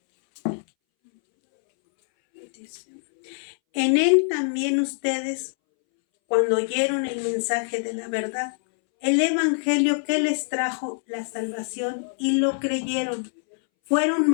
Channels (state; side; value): silent; right; 62 dB below the other